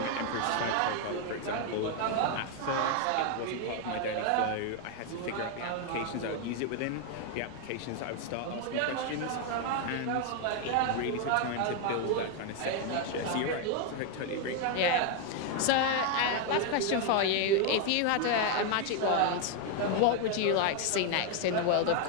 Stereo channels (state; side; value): different; both; correlation 0.01